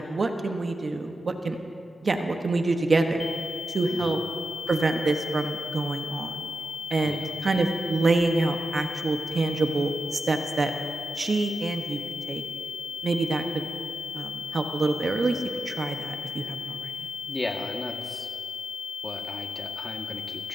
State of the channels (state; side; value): normal; both; correlation 0.89